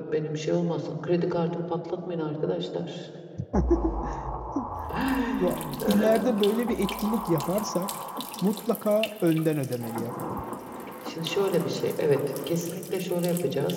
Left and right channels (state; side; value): identical; both; correlation 1.00